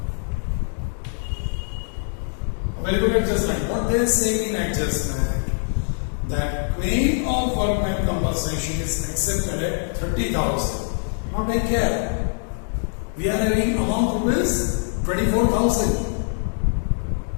very good adjustment. What they say in adjustment, that claim of workman compensation is accepted at 30,000. Now take care. We are having amount rupees 24,000.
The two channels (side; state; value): right; silent; digital silence